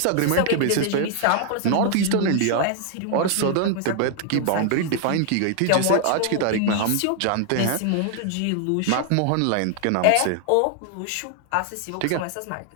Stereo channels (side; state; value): both; different; correlation 0.00